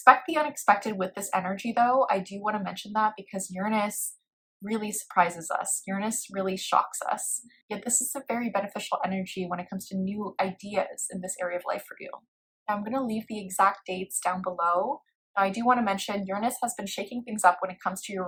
the unexpected with this energy though. I do want to mention that because Uranus really surprises us. Uranus really shocks us. Yet this is a very beneficial energy when it comes to new ideas in this area of life for you. Now I'm going to leave the exact dates down below. Now I do want to mention Uranus has been shaking things up when it comes to your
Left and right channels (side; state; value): both; identical; correlation 1.00